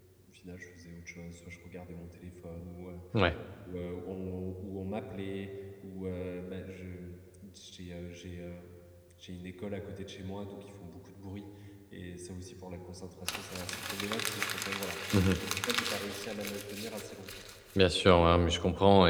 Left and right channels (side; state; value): both; identical; correlation 1.00